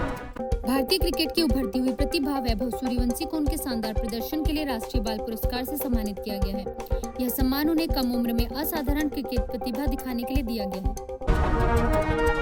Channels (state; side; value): identical; both; correlation 1.00